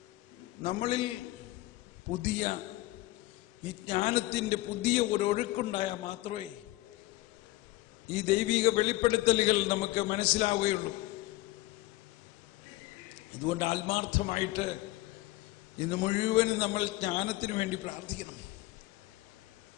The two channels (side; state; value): right; quieter; 19.1 dB